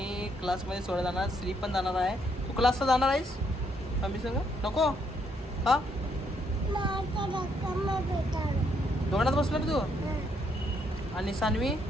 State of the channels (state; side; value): normal; both; correlation 0.73